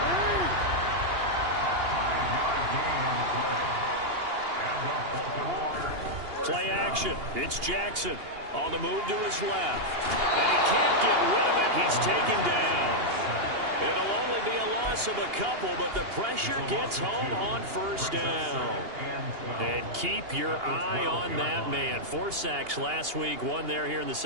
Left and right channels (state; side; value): late; left; 2.8 ms